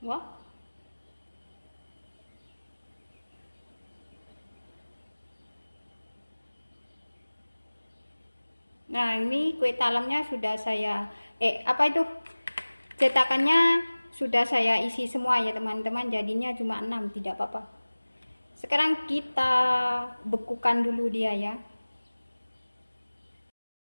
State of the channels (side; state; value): both; inverted; correlation -1.00